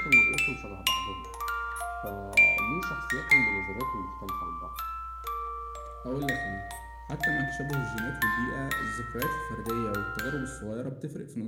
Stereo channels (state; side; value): identical; both; correlation 1.00